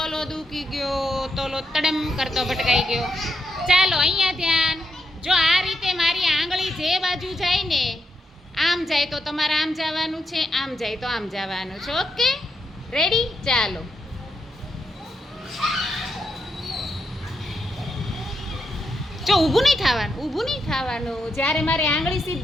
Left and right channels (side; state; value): both; normal; correlation 0.82